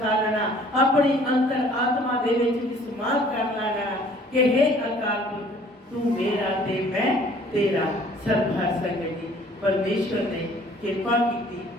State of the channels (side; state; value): both; normal; correlation 0.55